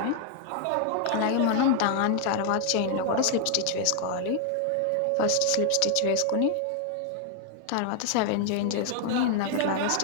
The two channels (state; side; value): different; both; correlation 0.00